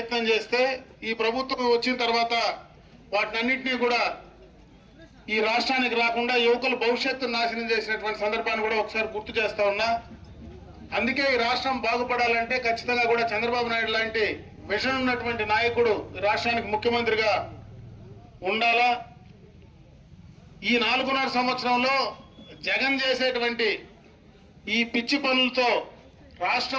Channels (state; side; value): identical; both; correlation 1.00